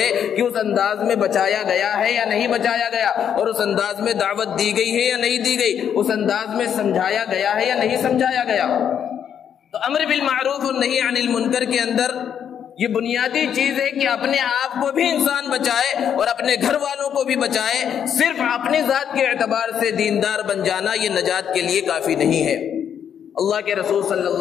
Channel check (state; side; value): quieter; right; 8.6 dB